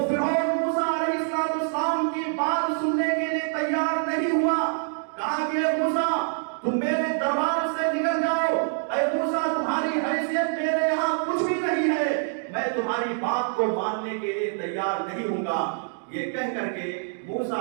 فرعون موسیٰ علیہ السلام کی بات سننے کے لیے تیار نہیں ہوا. کہا کہ اے موسیٰ تم میرے دربار سے نکل جاؤ, اے موسیٰ تمہاری حیثیت میرے یہاں کچھ بھی نہیں ہے, میں تمہاری بات کو ماننے کے لیے تیار نہیں ہوں گا. یہ کہہ کر کے موسیٰ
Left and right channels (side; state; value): left; silent; digital silence